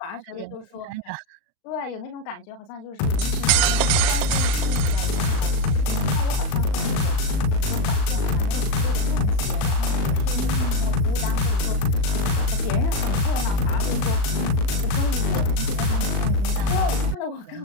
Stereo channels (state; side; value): late; right; 38 ms